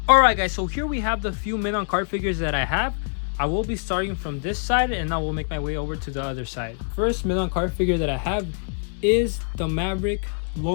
Alright guys, so here we have the few men on card figures that I have. I will be starting from this side and I will make my way over to the other side. First men on card figure that I have is the Maverick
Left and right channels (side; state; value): right; silent; 62 dB below the other